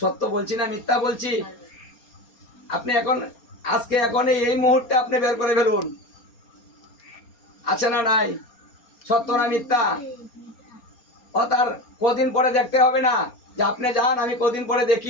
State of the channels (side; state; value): right; late; 4.3 ms